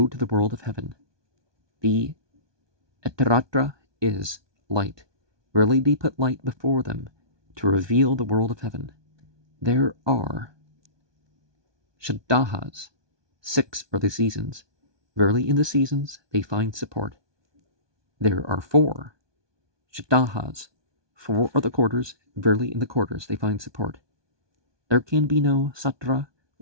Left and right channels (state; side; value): late; left; 1.2 ms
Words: to the world of heaven. The Etaratra is light. Really they put light before them to reveal the world of heaven. There are Shaddahas. 6 are the seasons. Verily in the seasons they find support. There are 4 Shaddahas. 4 are the quarters. Verily in the quarters they find support. There can be no Satra